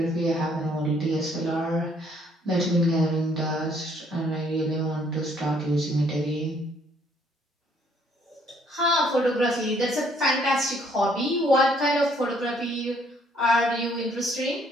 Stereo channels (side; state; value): both; normal; correlation 0.65